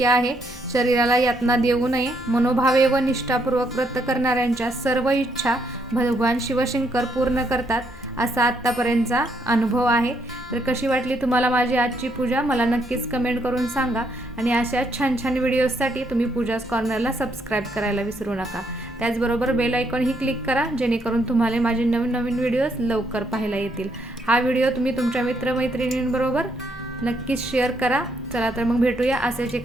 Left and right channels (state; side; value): normal; both; correlation 0.74